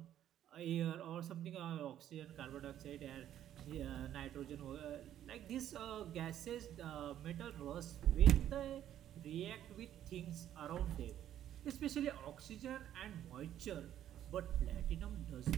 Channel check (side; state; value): left; quieter; 11.3 dB